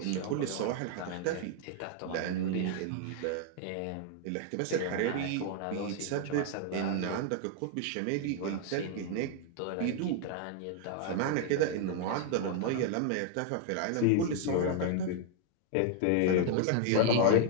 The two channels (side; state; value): both; different; correlation 0.00